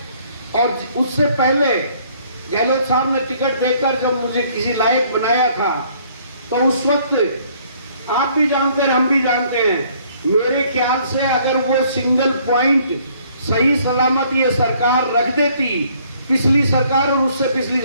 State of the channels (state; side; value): inverted; both; correlation -0.62